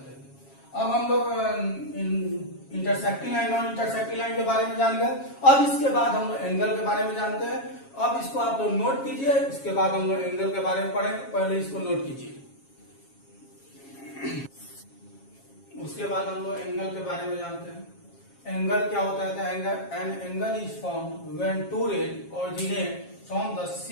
हैं। अब हम लोग intersecting line non intersecting line के बारे में जान गए। अब इसके बाद हम लोग एंगल के बारे में जानते हैं। अब इसको आप लोग नोट कीजिए, इसके बाद हम लोग एंगल के बारे में पढ़ेंगे, पहले इसको नोट कीजिए। उसके बाद हम लोग एंगल के बारे में जानते हैं। एंगल क्या होता है, an angle is formed when two rays originate from the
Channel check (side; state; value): right; late; 7.3 ms